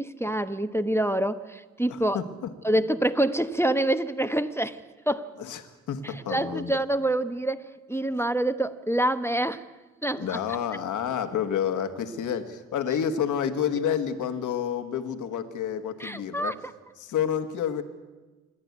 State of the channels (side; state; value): both; normal; correlation 0.52